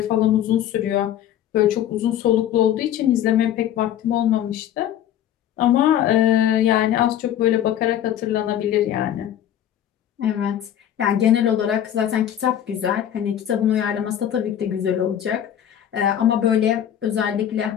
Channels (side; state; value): right; quieter; 10.7 dB